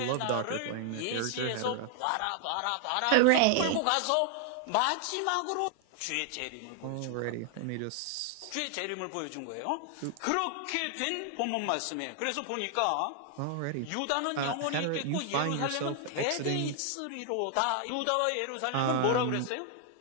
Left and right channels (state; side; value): different; both; correlation 0.00